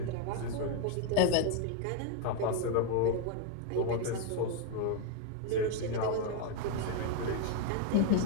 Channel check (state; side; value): different; both; correlation 0.01